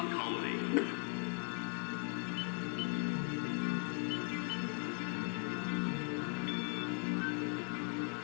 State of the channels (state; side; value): quieter; right; 39.8 dB